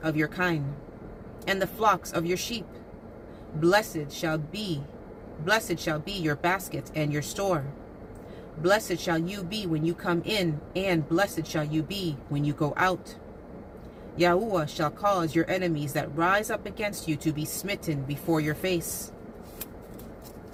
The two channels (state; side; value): identical; both; correlation 1.00